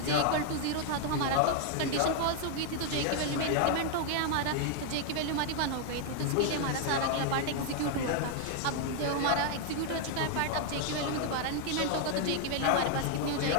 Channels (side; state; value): both; different; correlation 0.00